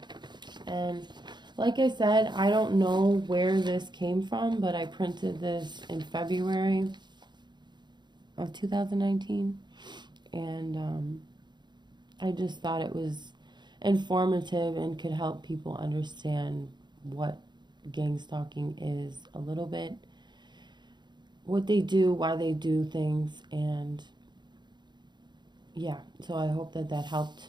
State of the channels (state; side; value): late; left; 0.21 ms